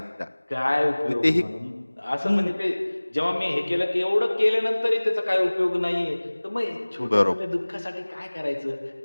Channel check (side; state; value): both; inverted; correlation -1.00